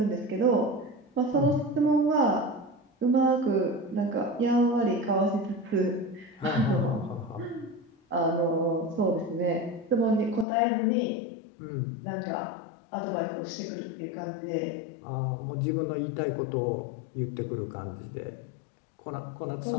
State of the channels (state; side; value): drops out; right; at 10.5 s